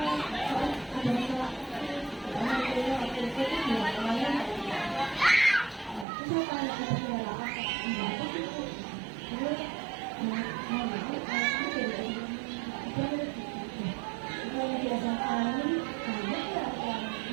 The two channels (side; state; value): left; drops out; at 6.1 s